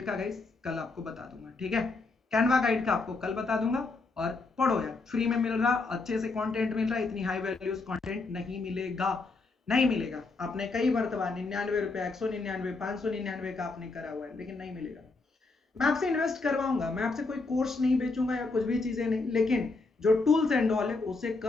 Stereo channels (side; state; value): right; quieter; 3.7 dB